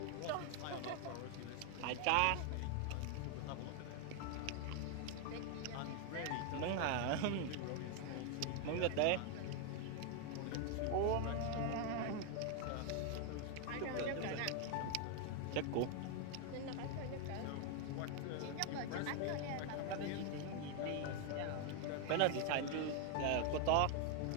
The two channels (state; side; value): different; both; correlation 0.00